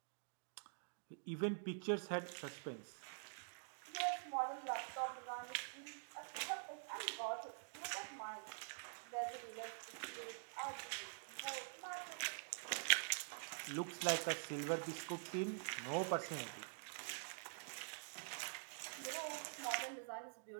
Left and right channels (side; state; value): left; silent; digital silence